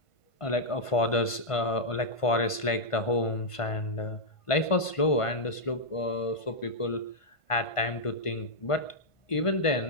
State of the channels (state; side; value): late; right; 1.5 ms